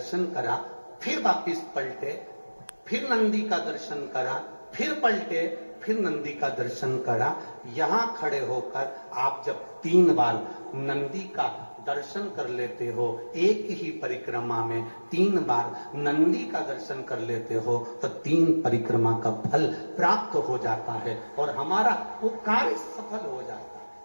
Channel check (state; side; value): inverted; both; correlation -1.00